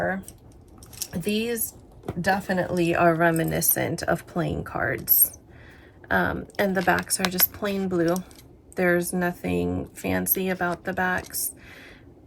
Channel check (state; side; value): identical; both; correlation 1.00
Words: these definitely are reminiscent of playing cards. And the backs are just plain blue. There's nothing fancy about the backs,